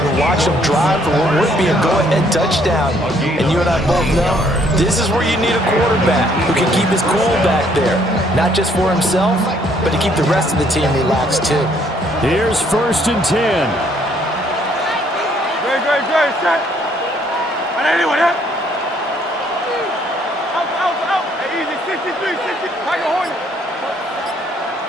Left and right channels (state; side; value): normal; both; correlation 0.66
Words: watch them drive for what would be a go-ahead touchdown. And you and I both know this is where you need a quarterback who can keep his cool back there. Not just for himself, but to keep the rest of the team relaxed too. Here's 1st and 10. Good, set. And anyone, yeah? Out. Hey, easy, 63, 60. Tiger Hornet.